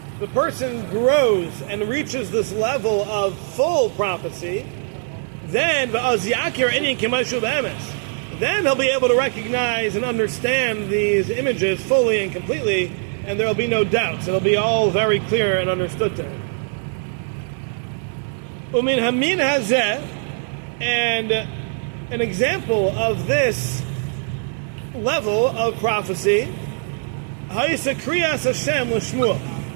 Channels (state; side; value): silent; left; 58 dB below the other